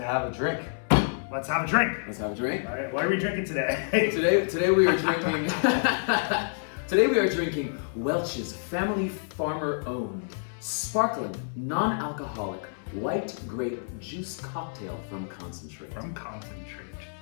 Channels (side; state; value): right; silent; 59 dB below the other